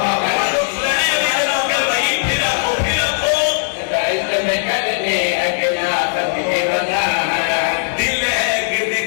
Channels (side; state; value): right; silent; 68 dB below the other